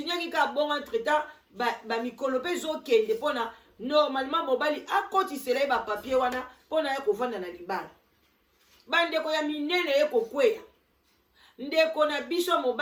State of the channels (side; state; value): both; identical; correlation 1.00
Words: ka bongo entretemps ba mikolo pe zo kende pona normalement mobali akotisela ye ba papier wana pona ya kovanda na libala. Bandeko ya minene ye kokweya. Ndeko na biso